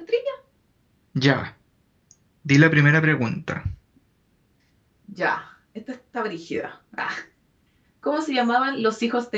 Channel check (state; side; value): identical; both; correlation 1.00